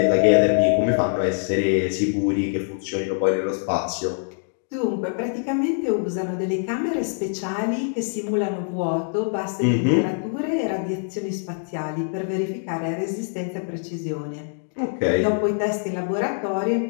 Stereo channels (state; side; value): silent; right; digital silence